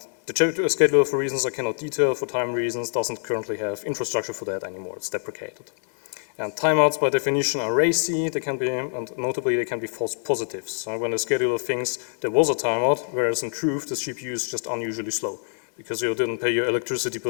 the scheduler, for reasons I cannot detail, for time reasons, doesn't currently have infrastructure for that anymore. It's deprecated. And timeouts, by definition, are racy. They can be, and notably, they can be false positives. So when the scheduler thinks there was a timeout, whereas in truth, the CPU is just unusually slow because you didn't pay your electricity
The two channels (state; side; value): silent; right; 62 dB below the other